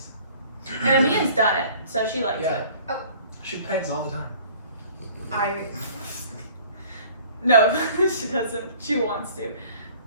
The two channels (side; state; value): both; inverted; correlation -0.51